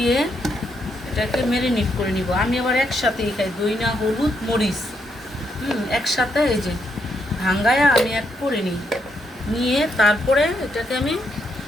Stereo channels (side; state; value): both; normal; correlation 0.78